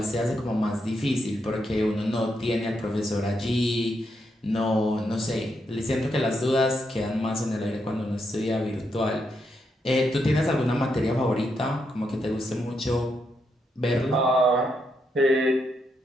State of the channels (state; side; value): normal; both; correlation 0.80